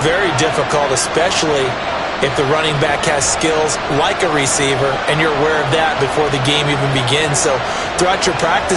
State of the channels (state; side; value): identical; both; correlation 1.00